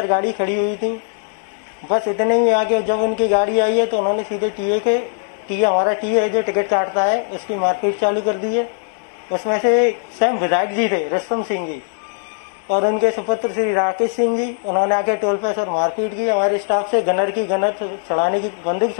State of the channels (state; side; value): silent; right; digital silence